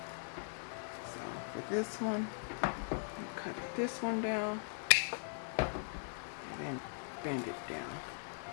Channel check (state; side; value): silent; right; digital silence